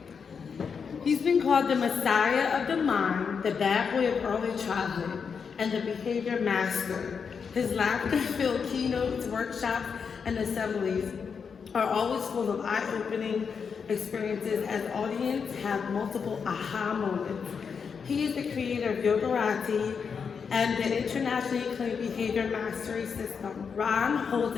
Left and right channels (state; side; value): quieter; right; 6.1 dB